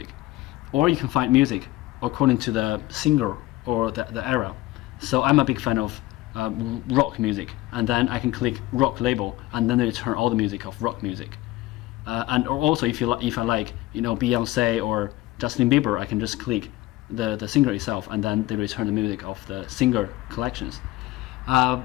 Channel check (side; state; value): right; quieter; 17.7 dB